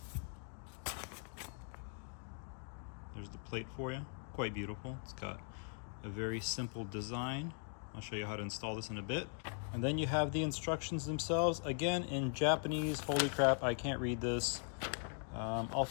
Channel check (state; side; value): silent; right; 51 dB below the other